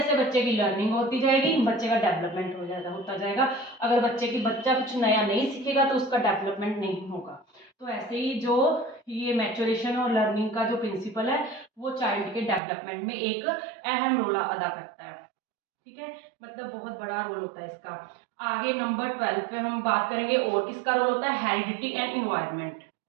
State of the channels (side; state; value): left; drops out; at 12.6 s